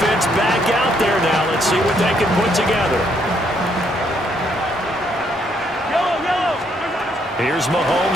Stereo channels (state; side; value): normal; both; correlation 0.71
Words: back out there now. Let's see what they can put together. Here's